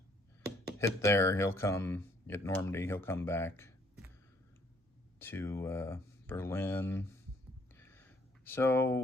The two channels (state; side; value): normal; both; correlation 0.64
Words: hit there. He'll come at Normandy. He'll come back to Berlin. So